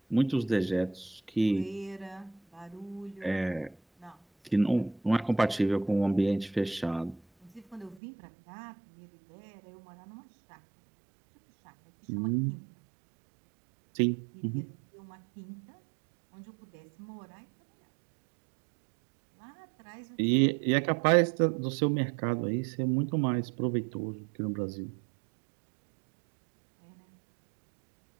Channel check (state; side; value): drops out; left; at 8.0 s